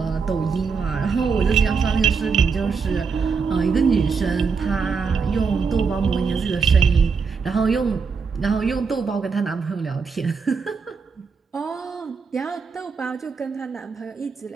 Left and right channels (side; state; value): left; quieter; 5.4 dB